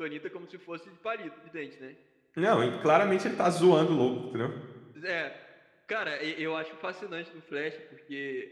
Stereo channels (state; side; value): identical; both; correlation 1.00